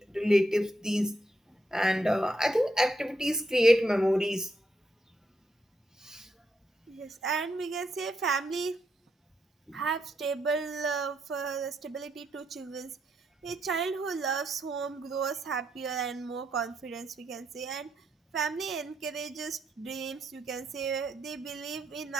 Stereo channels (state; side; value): normal; both; correlation 0.80